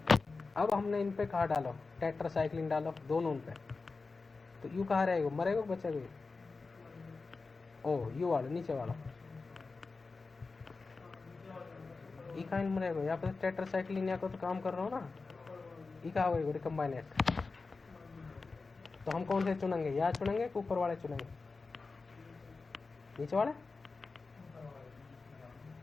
अब हमने इन पे कहा डालो टेट्रासाइक्लिन डालो दोनों पे, तो यू कहाँ रहेगा, मरेगा बचेगा? ओ यू वाला नीचे वाला ई कहाँ मरेगा? यहाँ पे टेट्रासाइक्लिन या को तो काम कर रहा हूँ ना, ई कहाँ होगा रिकम्बाइनेंट। तो हम कौन से चुनेंगे, यहाँ चुनेंगे कि ऊपर वाले चुनेंगे? नीचे वाला,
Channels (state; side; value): quieter; right; 4.1 dB